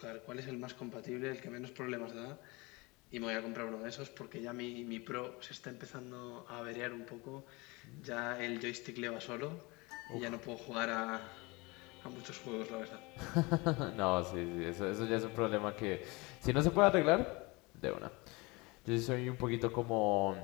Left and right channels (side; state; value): right; quieter; 25.3 dB